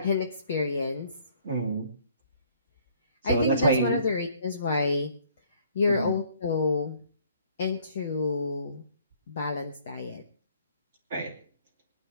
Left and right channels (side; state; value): both; inverted; correlation -0.61